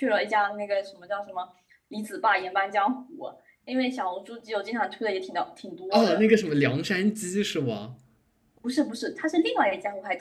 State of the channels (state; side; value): identical; both; correlation 1.00